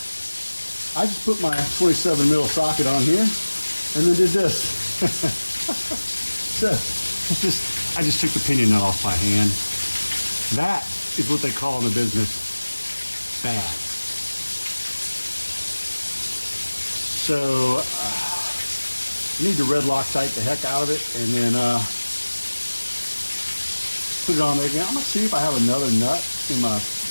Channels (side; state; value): both; inverted; correlation -1.00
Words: I just put my 27 mil socket on here and then did this. So I just took the pinion nut off by hand. That is what they call in the business bad. So you need to red Loctite the heck out of it and then put it on there again. I'm gonna see if I have another nut in my